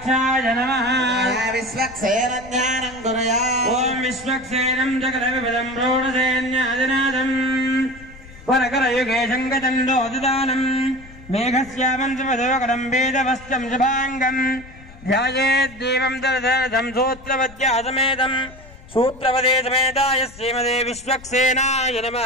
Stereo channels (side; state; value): left; noise; rumble, 20 dB below the sound